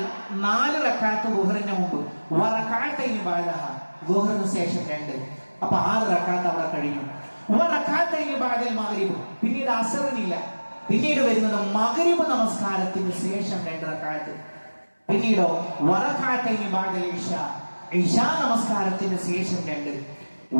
4 റകഅത്ത് ദുഹറിന് മുമ്പ്, വറകഅത്തൈനി ബഅദഹ, ദുഹറിന് ശേഷം 2, അപ്പൊ 6 റകഅത്ത് അവിടെ കഴിഞ്ഞു. വറകഅത്തൈനി ബഅദൽ മഗ്രിബ്, പിന്നീട് അസറിനില്ല, പിന്നീട് വരുന്നത് മഗ്രിബ് നമസ്കാരത്തിന് ശേഷം 2 റകഅത്ത്, പിന്നീടോ വറകഅത്തൈനി ബഅദൽ ഇശാ, ഇശാ നമസ്കാരത്തിന് ശേഷം 2,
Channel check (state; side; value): inverted; both; correlation -1.00